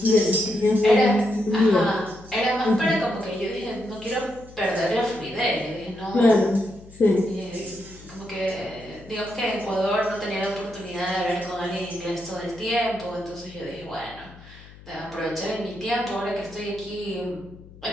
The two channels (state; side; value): noise; left; hum, 20 dB below the sound